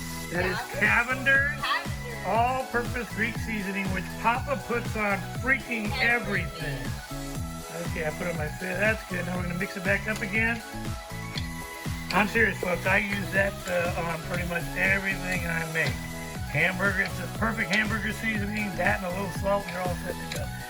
That is Cavender's all-purpose Greek seasoning, which Papa puts on freaking everything. Okay, I put it on my face. That's good. Now we're going to mix it back up again. I'm serious, folks. I use that on pretty much everything I make. Hamburger, it's a perfect hamburger seasoning. That and a little salt, and you're all set to go.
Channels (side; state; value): both; identical; correlation 1.00